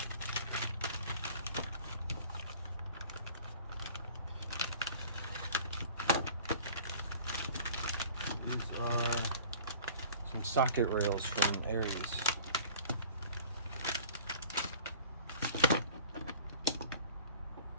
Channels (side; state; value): both; inverted; correlation -0.47